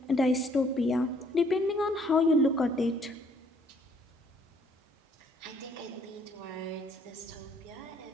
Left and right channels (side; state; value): both; normal; correlation 0.63